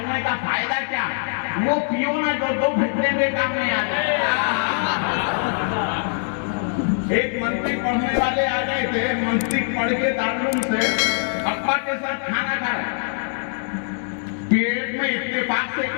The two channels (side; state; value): right; silent; digital silence